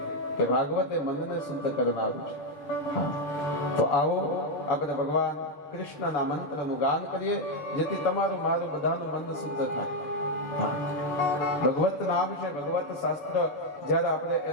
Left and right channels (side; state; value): right; late; 6.9 ms